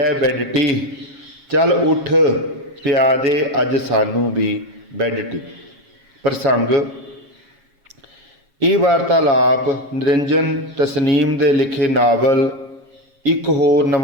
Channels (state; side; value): late; left; 7.3 ms